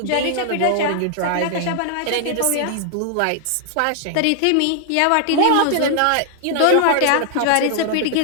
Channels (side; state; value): both; different; correlation 0.00